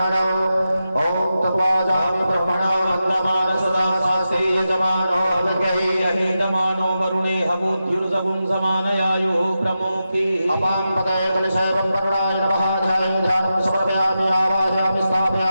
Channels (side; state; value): both; inverted; correlation -0.90